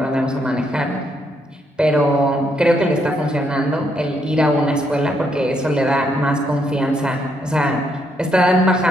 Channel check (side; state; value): both; normal; correlation 0.75